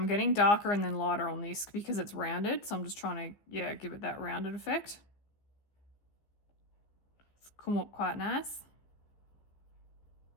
getting darker and then lighter on this because it's rounded, so I'm just trying to, yeah, give it that rounded effect. It's come up quite nice.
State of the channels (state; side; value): late; right; 15 ms